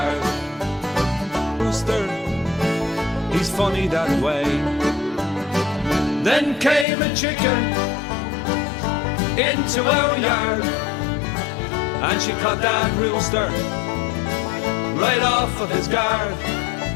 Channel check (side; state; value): right; drops out; at 6.9 s